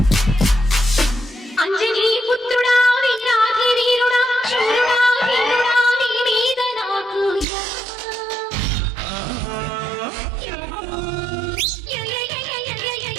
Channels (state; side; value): drops out; left; at 7.5 s